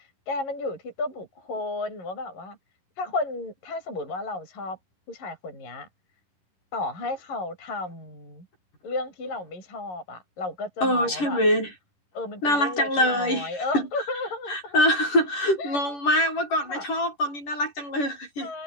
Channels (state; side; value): late; right; 10 ms